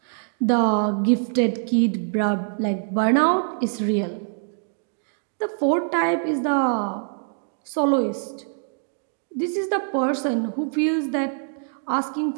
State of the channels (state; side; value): silent; left; digital silence